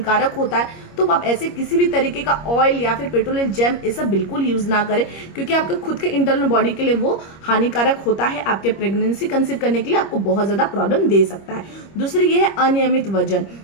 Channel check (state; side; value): late; right; 25 ms